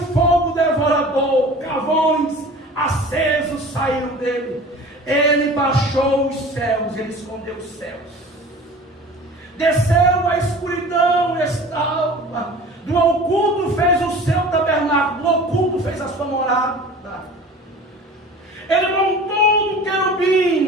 fogo devorador, carvões acesos saíram dele. Ele baixou os céus, ele escondeu os céus, desceu a escuridão e estava, do oculto fez o seu tabernáculo, do oculto fez a sua morada. Ele montou um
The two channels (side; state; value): both; normal; correlation 0.41